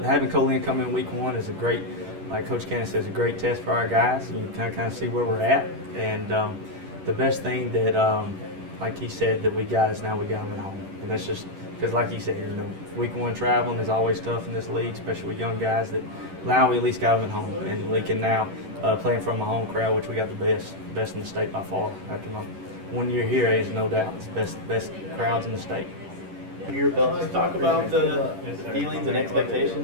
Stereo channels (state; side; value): late; left; 11 ms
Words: having Colin come in week one is a great, like Coach Cannon says, a great test for our guys. You can kind of see where we're at, and the best thing that, like he said, that we got is now we got them at home, and that's just because, like he said, you know, week one traveling is always tough in this league, especially with young guys. That now we at least got them at home, and we can now play in front of a home crowd, which we got the best in the state by far. After my 1 year here, is no doubt it's the best crowds in the state. Your belt, just talk about the feelings and